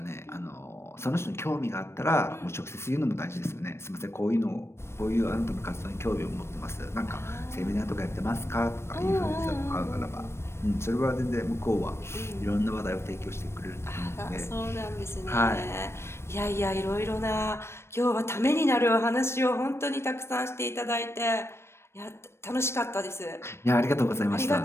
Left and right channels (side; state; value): right; late; 0.12 ms